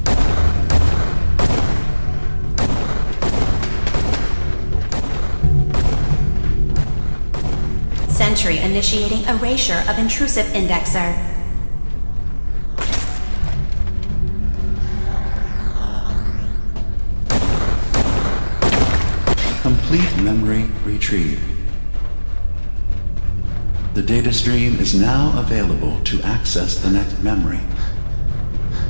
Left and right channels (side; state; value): both; inverted; correlation -1.00